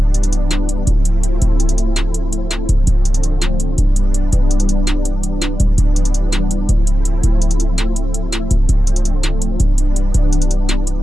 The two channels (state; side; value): normal; both; correlation 0.93